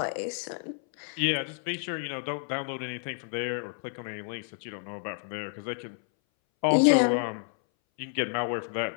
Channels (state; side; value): silent; right; 58 dB below the other